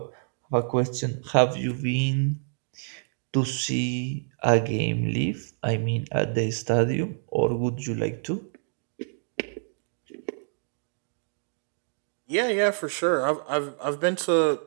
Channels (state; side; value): silent; left; digital silence